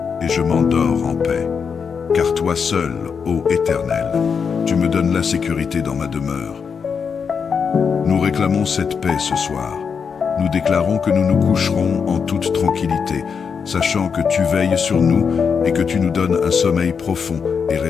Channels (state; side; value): quieter; right; 6.2 dB